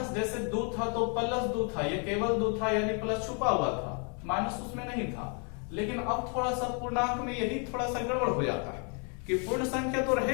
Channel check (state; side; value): quieter; right; 38.8 dB